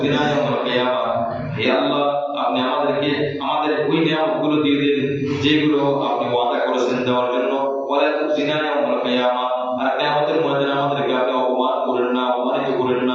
ইয়াওমাল কিয়ামাহ। হে আল্লাহ, আপনি আমাদেরকে আমাদের ওই নিয়ামতগুলো দিয়ে দিন যেগুলো আপনি ওয়াদা করেছেন দেওয়ার জন্য, ওয়া লা তুখজিনা ইয়াওমাল কিয়ামাহ, আর কিয়ামতের ময়দানে আমাদেরকে আপনি অপমান করেন না, অপমানিত করেন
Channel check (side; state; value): both; identical; correlation 1.00